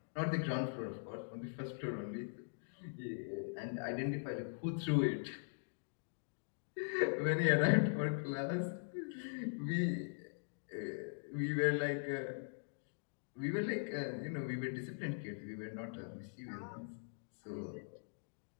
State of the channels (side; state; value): right; silent; digital silence